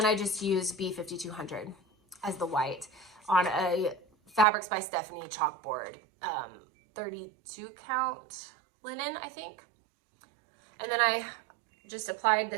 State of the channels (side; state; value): left; drops out; at 4.5 s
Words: I just use B5200 as the white on a Fabrics by Stephanie chalkboard, 32 count linen, I think. And then I just applied